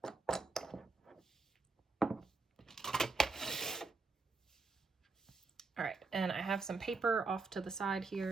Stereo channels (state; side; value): quieter; left; 3.9 dB